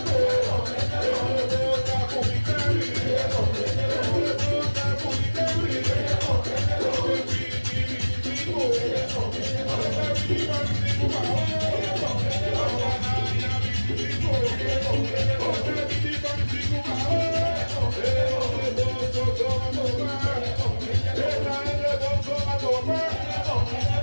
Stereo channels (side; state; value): both; inverted; correlation -1.00